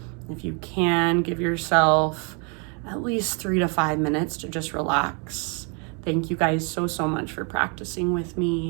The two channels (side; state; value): left; quieter; 36.3 dB